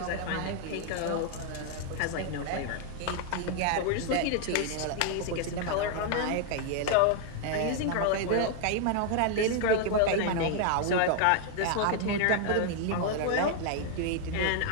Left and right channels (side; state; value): both; different; correlation 0.00